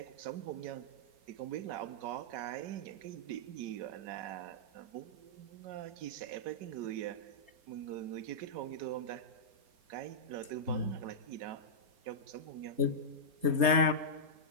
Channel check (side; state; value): left; late; 4.3 ms